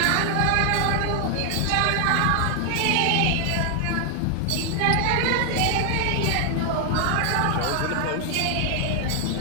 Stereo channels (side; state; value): both; different; correlation 0.00